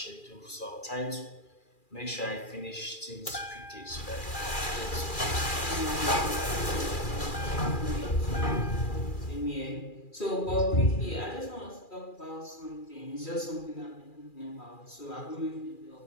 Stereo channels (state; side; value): late; right; 2.4 ms